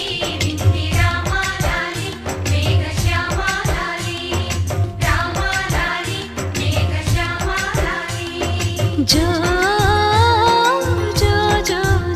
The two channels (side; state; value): both; identical; correlation 1.00